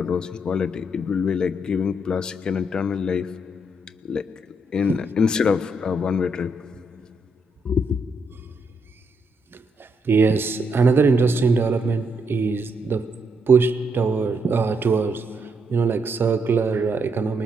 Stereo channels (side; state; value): both; normal; correlation 0.77